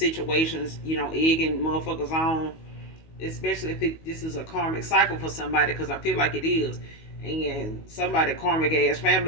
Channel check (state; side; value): late; right; 19 ms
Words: egging motherfuckers on, especially if this is a karmic cycle for somebody, because I feel like it is. And somebody karmic ass